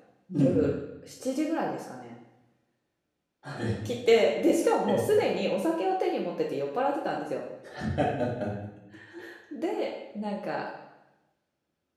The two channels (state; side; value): identical; both; correlation 1.00